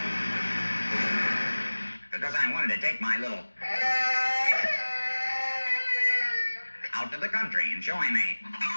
Because I wanted to take my little... out to the country and show him a...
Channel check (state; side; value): inverted; both; correlation -1.00